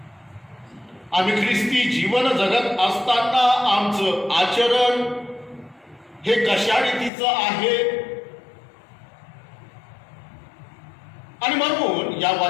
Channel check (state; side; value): drops out; right; at 7.1 s